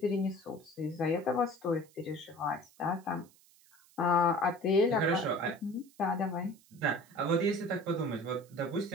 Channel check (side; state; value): right; noise; hiss, 28 dB below the sound